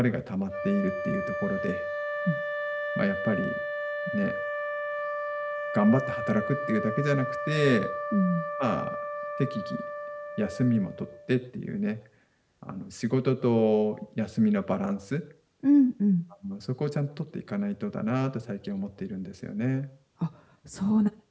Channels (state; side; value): identical; both; correlation 1.00